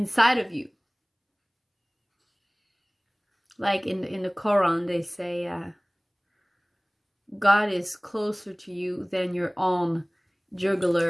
of you. Like in the Quran, they say God is closer to you than your own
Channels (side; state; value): both; identical; correlation 1.00